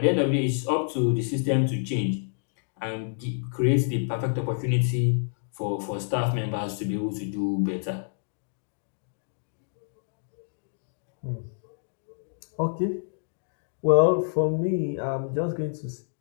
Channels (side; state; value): right; silent; digital silence